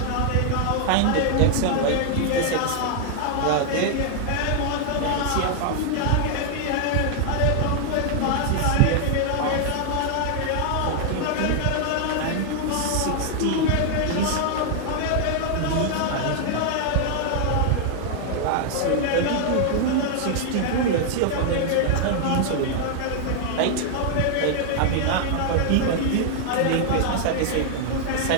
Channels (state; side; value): different; both; correlation 0.00